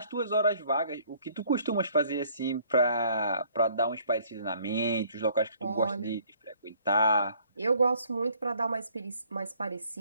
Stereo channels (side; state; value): both; inverted; correlation -0.60